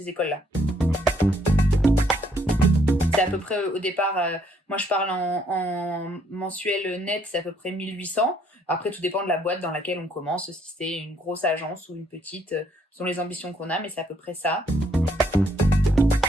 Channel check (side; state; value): both; normal; correlation 0.68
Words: écoles-là. C'est à peu près au départ, moi je parle en mensuel net, c'est à peu près 1800. Après, tout dépend de la boîte dans laquelle on commence, si c'est une grosse agence ou une petite, selon les ambitions qu'on a, mais c'est à peu près ça.